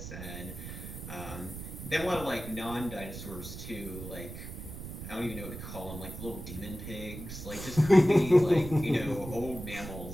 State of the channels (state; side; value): noise; right; rumble, 10 dB below the sound